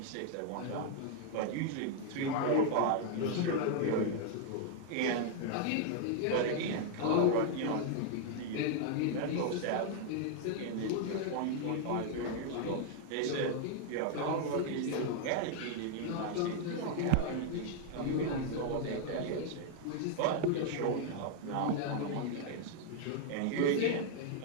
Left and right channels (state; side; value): different; both; correlation 0.00